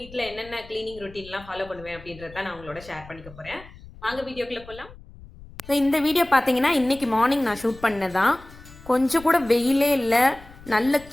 என்னென்ன கிளீனிங் ரொட்டீன்லாம் ஃபாலோ பண்ணுவேன் அப்படின்றத நான் உங்களோட ஷேர் பண்ணிக்க போறேன். வாங்க வீடியோக்குள்ள போகலாம். இந்த வீடியோ பார்த்தீங்கன்னா இன்னைக்கு மார்னிங் நான் ஷூட் பண்ணதான். கொஞ்சம் கூட வெயிலே இல்லை, நல்ல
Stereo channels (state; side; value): noise; left; rumble, 20 dB below the sound